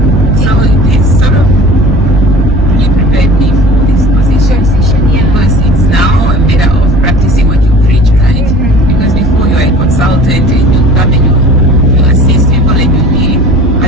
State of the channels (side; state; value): both; normal; correlation 0.44